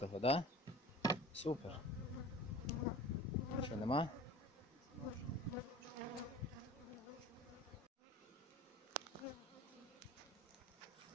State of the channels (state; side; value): normal; both; correlation 0.40